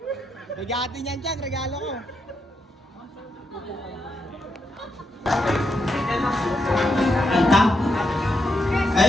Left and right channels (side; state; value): both; normal; correlation 0.82